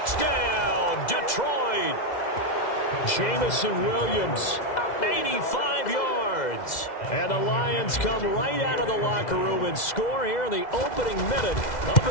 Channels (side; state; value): right; late; 2.0 ms